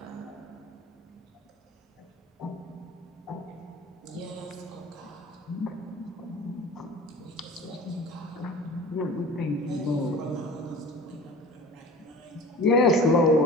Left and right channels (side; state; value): both; normal; correlation 0.39